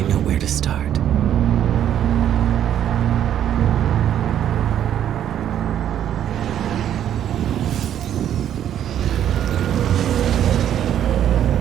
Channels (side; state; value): left; quieter; 10.4 dB